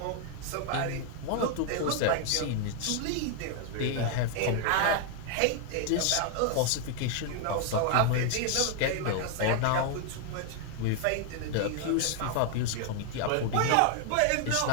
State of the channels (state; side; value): different; both; correlation 0.00